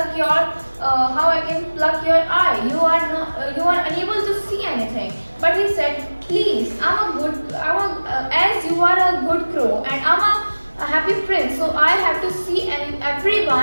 your eye? You are unable to see anything. But he said, please, as you are a good crow and I'm a happy prince, so I have to see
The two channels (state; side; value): inverted; both; correlation -1.00